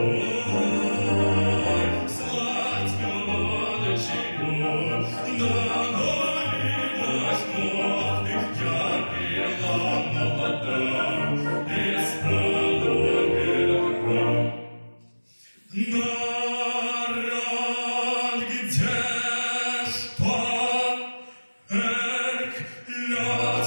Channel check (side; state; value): both; inverted; correlation -1.00